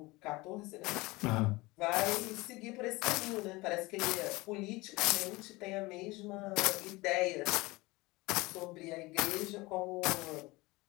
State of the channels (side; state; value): right; quieter; 22.2 dB